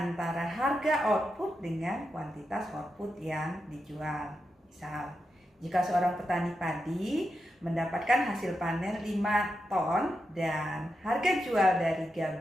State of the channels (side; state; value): both; normal; correlation 0.87